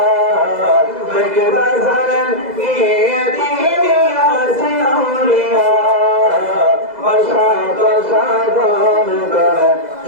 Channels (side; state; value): left; late; 2.0 ms